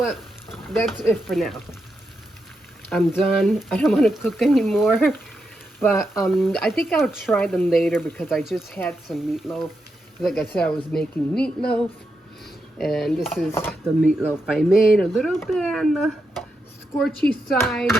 That's it for now. I'm done. I don't want to cook anymore. But I think I'll try them later because I just had some meatloaf. Like I said, I was making meatloaf. And this is the meatloaf I made. A little bit on the scorchy side,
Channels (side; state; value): both; normal; correlation 0.85